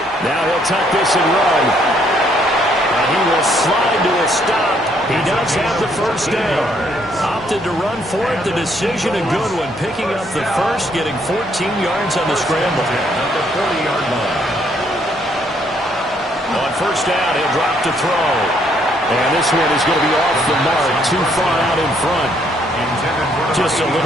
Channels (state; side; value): normal; both; correlation 0.69